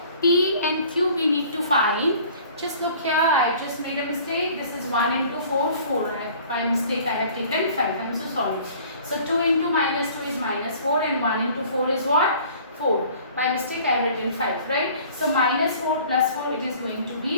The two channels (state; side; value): inverted; both; correlation -0.50